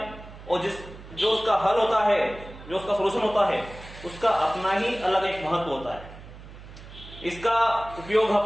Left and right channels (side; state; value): right; noise; hum, 16 dB below the sound